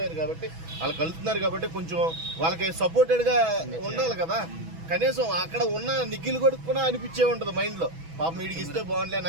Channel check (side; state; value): left; late; 6.1 ms